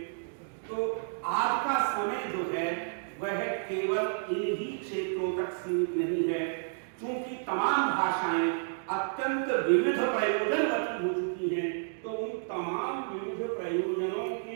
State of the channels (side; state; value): left; silent; digital silence